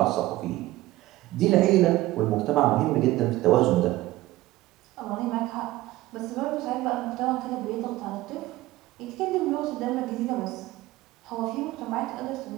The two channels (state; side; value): quieter; left; 17.1 dB